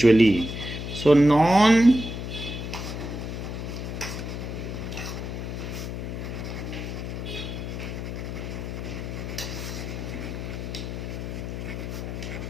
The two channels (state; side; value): noise; left; hum, 5 dB below the sound